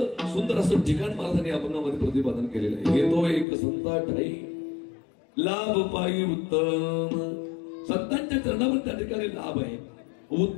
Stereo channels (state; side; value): drops out; right; at 3.5 s